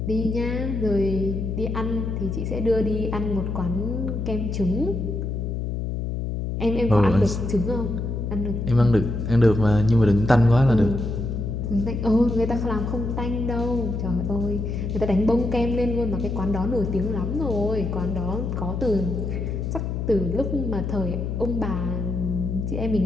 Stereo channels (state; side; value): noise; left; hum, 2 dB below the sound